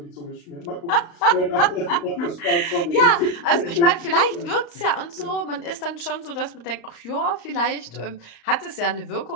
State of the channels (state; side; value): late; right; 34 ms